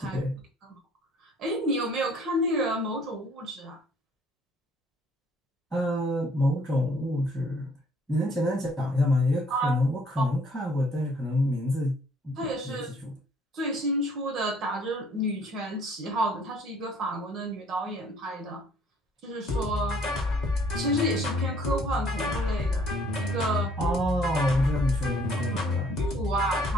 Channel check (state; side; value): normal; both; correlation 0.60